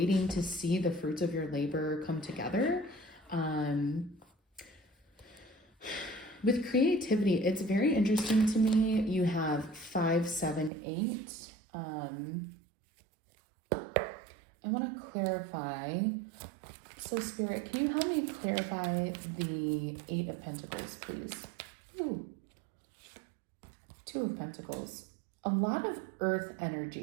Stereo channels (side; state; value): left; drops out; at 10.7 s